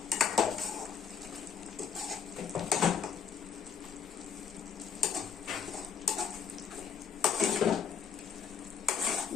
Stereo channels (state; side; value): quieter; right; 7.1 dB